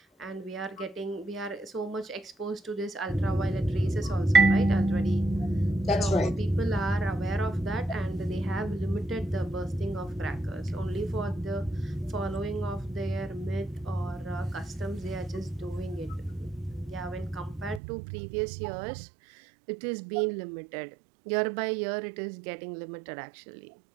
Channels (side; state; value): left; drops out; at 17.8 s